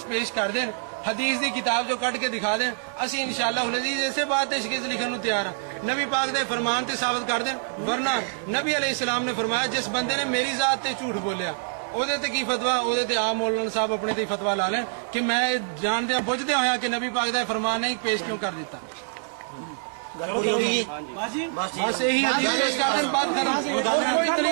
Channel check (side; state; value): left; silent; digital silence